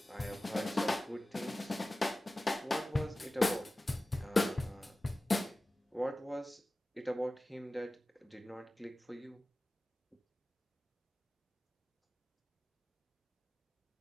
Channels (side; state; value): both; normal; correlation 0.96